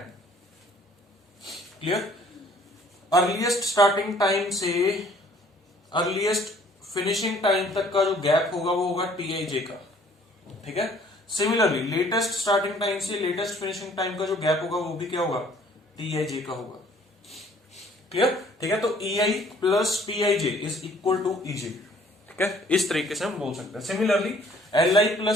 Clear, earliest starting time से अर्लीस्ट फिनिशिंग टाइम तक का जो गैप होगा वो होगा TIJ का। ठीक है, सिमिलरली लेटेस्ट स्टार्टिंग टाइम से लेटेस्ट फिनिशिंग टाइम का जो गैप होगा वो भी क्या होगा, TIJ का होगा। क्लियर, ठीक है, तो EI plus TIJ is equal to EJ। ठीक है, इस तरीके से हम बोल सकते हैं। Similarly LI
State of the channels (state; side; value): normal; both; correlation 0.58